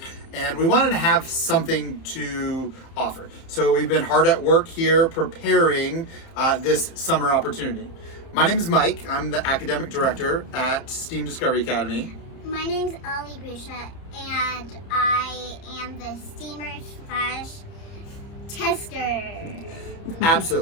And we wanted to have something to offer. So we've been hard at work here preparing this summer opportunity. My name is Mike. I'm the academic director at STEAM Discovery Academy. My name's Ali Bishop, and I am the steamer/tester.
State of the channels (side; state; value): right; late; 30 ms